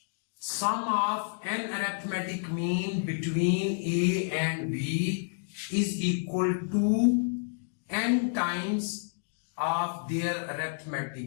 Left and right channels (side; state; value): right; silent; digital silence